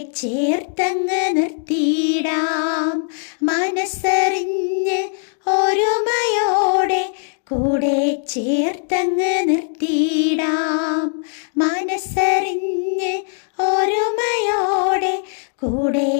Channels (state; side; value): silent; right; 64 dB below the other